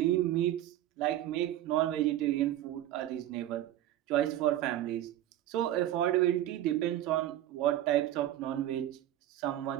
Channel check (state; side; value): quieter; left; 13.0 dB